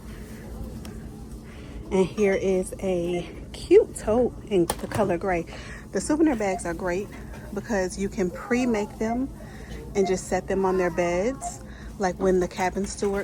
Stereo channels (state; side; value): identical; both; correlation 1.00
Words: And here is a cute tote in the color gray. The souvenir bags are great because you can pre-make them and just set them on their beds. Like when the cabin